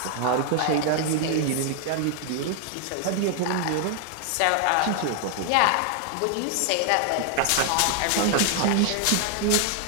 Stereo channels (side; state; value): both; different; correlation 0.00